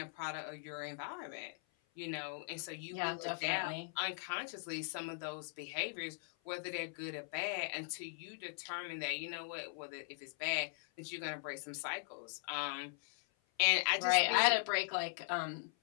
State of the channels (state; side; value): silent; right; 51 dB below the other